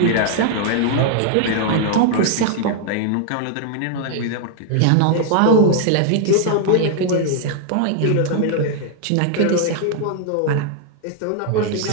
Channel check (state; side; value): different; both; correlation 0.00